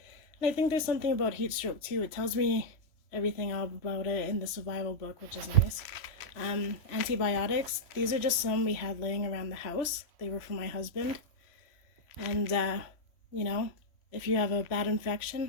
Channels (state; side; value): late; right; 3.1 ms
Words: And I think there's something about heat stroke too. It tells me everything all about it in the survival book, which is nice. Antibiotics, these are just some we had laying around the house. They were for my husband. And you know, if you have a bad